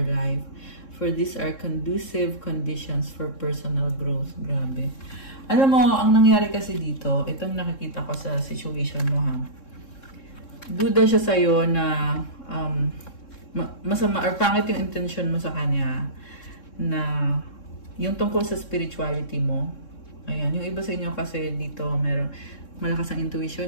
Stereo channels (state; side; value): late; right; 3.7 ms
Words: life. For these are conducive conditions for personal growth. Grabe. Alam mo, ang nangyari kasi dito, itong nakikita ko sa situation mo ha. Duda siya sa'yo na masama or pangit yung intention mo sa kanya na yung tungkol sa spirituality mo. Ayan, yung iba sa inyo kasi dito meron malakas ang